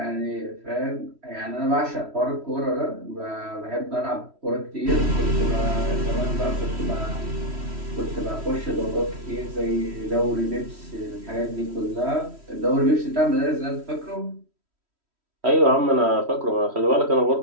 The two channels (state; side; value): late; left; 3.1 ms